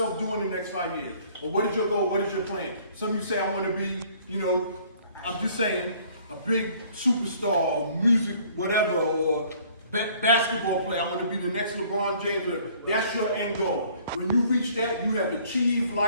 doing in the next 5 years? Or what is your goal? What is your plan? Some of you say, I want to be, I'm just saying, a big superstar or music, whatever, or basketball player. I want to be the next LeBron James. That's your end goal. When you reach that, you have achieved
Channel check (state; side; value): inverted; both; correlation -0.57